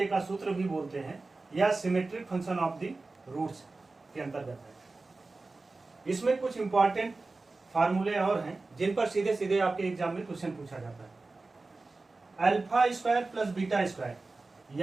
का सूत्र भी बोलते हैं, या symmetric function of the roots के अंतर्गत है। इसमें कुछ इंपॉर्टेंट फार्मूले और हैं जिन पर सीधे सीधे आपके एग्जाम में क्वेश्चन पूछा जाता है। Alpha square plus beta square,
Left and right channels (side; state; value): left; quieter; 3.5 dB